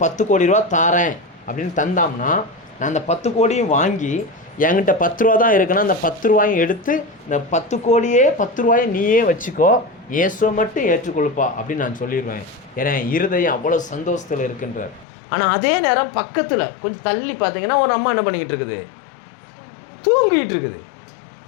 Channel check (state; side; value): drops out; right; at 15.1 s